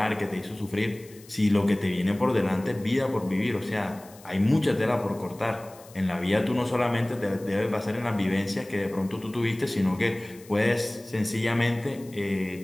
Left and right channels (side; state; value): left; noise; hiss, 23 dB below the sound